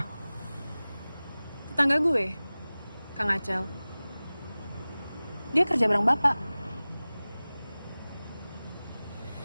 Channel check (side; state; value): both; inverted; correlation -0.98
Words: Tetangga gue, Kang Acel. Dia kerja bareng Bapak.